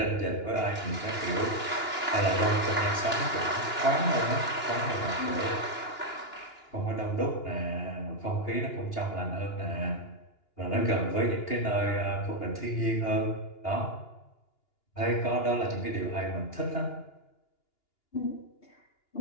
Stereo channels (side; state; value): right; late; 2.9 ms